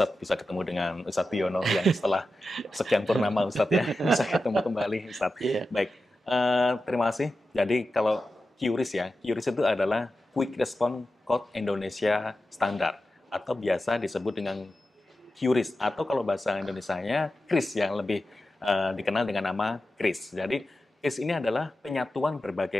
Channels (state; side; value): normal; both; correlation 0.92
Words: bisa ketemu dengan Ustadz Biono yang setelah sekian purnama Ustadz ya, bisa ketemu kembali Ustadz. Baik, terima kasih. Jadi kalau QRIS ya, QRIS itu adalah Quick Response Code Indonesia Standard, atau biasa disebut dengan QRIS, atau kalau bahasa Indonesianya KRIS yang lebih dikenal dengan nama KRIS. Jadi KRIS ini adalah penyatuan